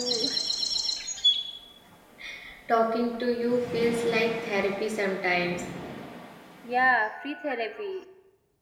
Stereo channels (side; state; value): both; identical; correlation 1.00